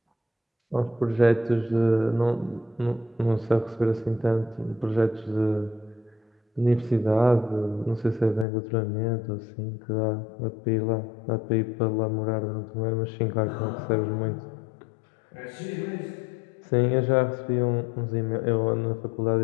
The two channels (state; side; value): drops out; right; at 8.5 s